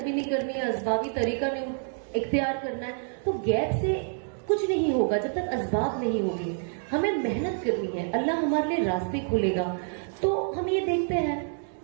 भी नहीं करनी है, असबाबी तरीका नहीं इख्तियार करना है, तो गैप से कुछ नहीं होगा जब तक असबाब नहीं होगी। हमें मेहनत करनी है, अल्लाह हमारे लिए रास्ते खोलेगा। तो हम ये देखते हैं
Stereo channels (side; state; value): left; silent; 60 dB below the other